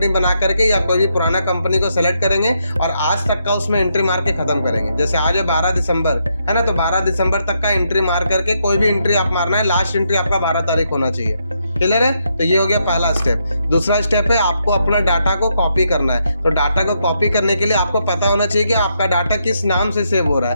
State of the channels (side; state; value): both; inverted; correlation -0.78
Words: बना करके या कोई भी पुराना कंपनी को सेलेक्ट करेंगे और आज तक का उसमें एंट्री मार के खत्म करेंगे। जैसे आज है 12 दिसंबर, है ना, तो 12 दिसंबर तक का एंट्री मार करके कोई भी एंट्री आप मारना है, लास्ट एंट्री आपका 12 तारीख होना चाहिए। क्लियर है। तो ये हो गया पहला स्टेप। दूसरा स्टेप है आपको अपना डाटा को कॉपी करना है। तो डाटा को कॉपी करने के लिए आपको पता होना चाहिए कि आपका डाटा किस नाम से सेव हो रहा